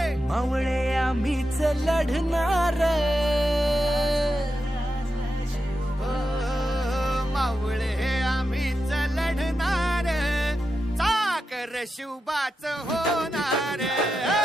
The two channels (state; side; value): normal; both; correlation 0.88